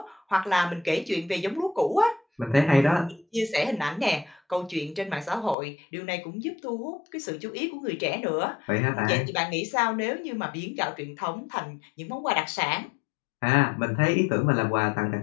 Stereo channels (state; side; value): drops out; right; at 5.6 s